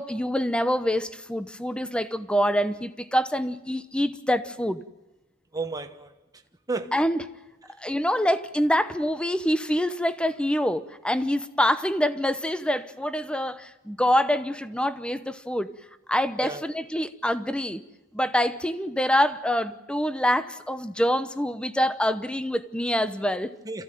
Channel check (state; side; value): normal; both; correlation 0.87